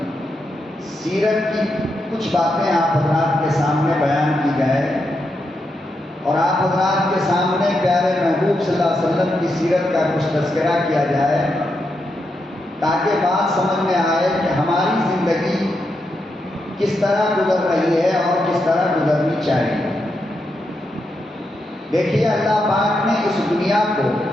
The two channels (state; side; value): normal; both; correlation 0.84